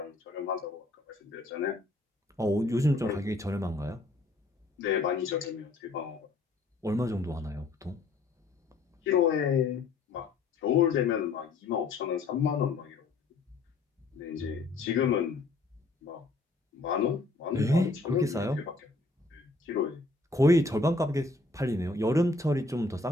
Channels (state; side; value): quieter; right; 3.4 dB